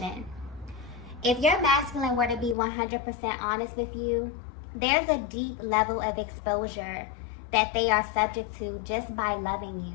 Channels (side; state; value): right; drops out; at 2.6 s